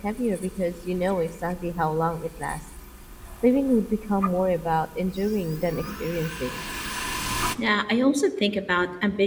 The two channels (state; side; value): identical; both; correlation 1.00